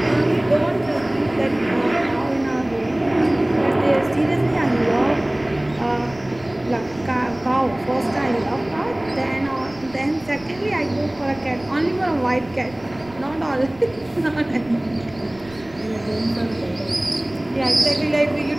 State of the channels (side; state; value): right; noise; rumble, 22 dB below the sound